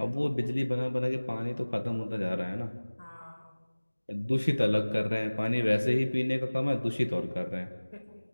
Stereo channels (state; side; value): inverted; both; correlation -1.00